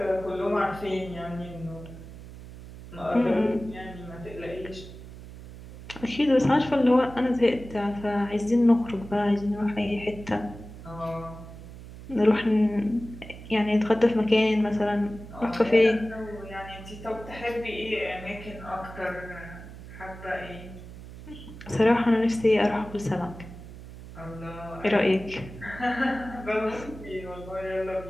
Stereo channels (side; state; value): right; noise; hum, 15 dB below the sound